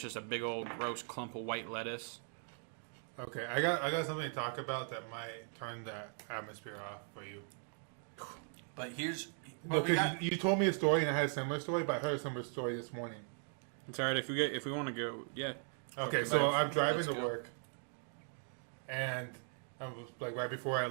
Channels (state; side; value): silent; left; 52 dB below the other